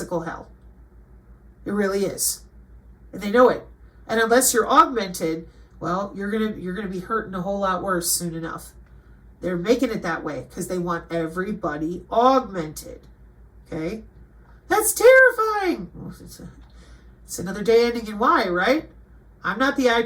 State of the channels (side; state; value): both; identical; correlation 1.00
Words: hell. It really is. And they know it. And unless you're augmented, well, you're gonna be hurting a whole lot worse soon enough. They're making it that way because they want everybody augmented. Okay? That's terrifying. Well, it's another day ending in Y, right? I'm not the